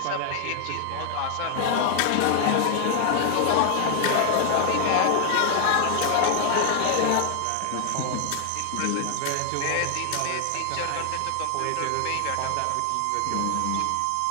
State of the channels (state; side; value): different; both; correlation 0.00